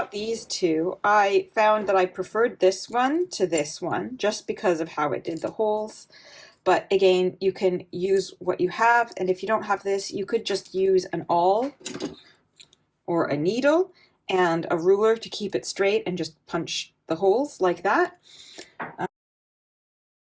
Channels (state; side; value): identical; both; correlation 1.00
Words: these two. I found that I preferred this one to this one just because of how it did the holes. But again, you can use what you have. And if you don't have this, you could just use an awl or a needle and a ruler to keep it straight and just punch the holes like that.